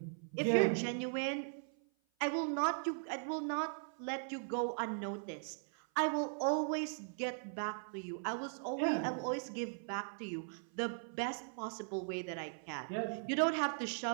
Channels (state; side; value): silent; left; 52 dB below the other